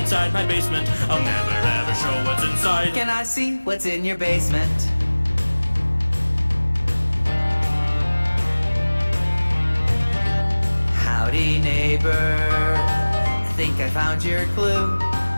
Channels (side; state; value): both; inverted; correlation -1.00